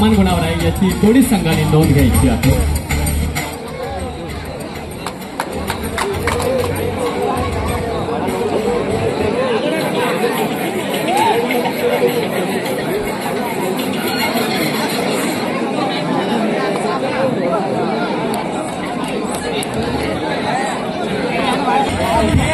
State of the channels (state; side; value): identical; both; correlation 1.00